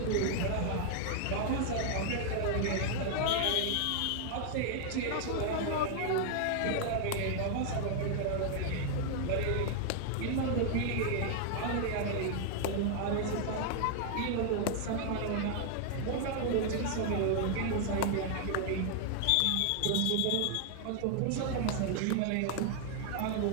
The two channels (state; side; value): different; both; correlation 0.00